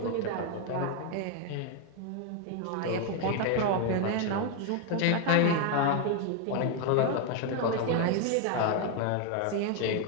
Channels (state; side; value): different; both; correlation 0.01